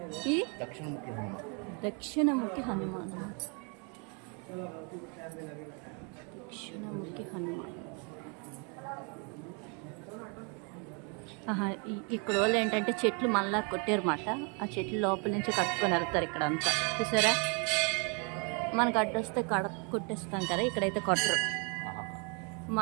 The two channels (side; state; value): left; quieter; 35.5 dB